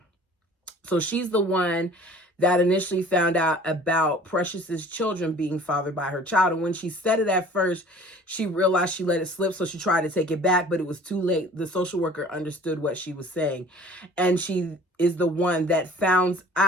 So she's the one that initially found out about Precious's children being fathered by her child. And when she said it at first, she realized she let it slip, so she tried to take it back, but it was too late. The social worker understood what she was saying, and she is the one that finds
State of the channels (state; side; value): normal; both; correlation 0.48